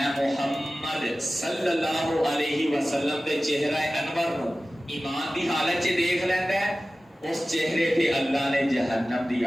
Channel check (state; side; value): normal; both; correlation 0.96